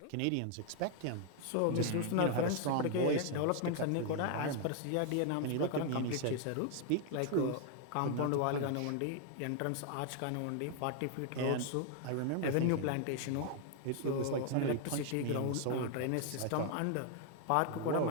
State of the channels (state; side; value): different; both; correlation 0.00